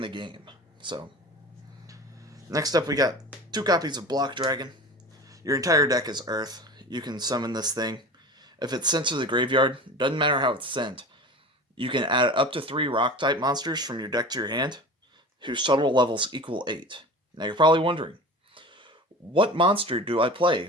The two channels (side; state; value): both; normal; correlation 0.35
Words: the game. So, next up we got 2 copies of Block Dragon. Your entire deck is Earth. You can summon this thing. If it's sent to the graveyard, doesn't matter how it's sent, you can add up to 3 rock-type monsters from your deck to your hand, whose total levels equal 8. Now you're probably wondering, what monster do I